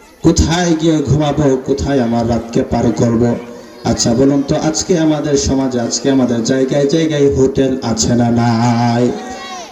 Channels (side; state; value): both; identical; correlation 1.00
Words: কোথায় গিয়ে ঘুমাবো, কোথায় আমার রাতকে পার করব? আচ্ছা বলুন তো, আজকে আমাদের সমাজে, আজকে আমাদের জায়গায় জায়গায় হোটেল আছে না নাই?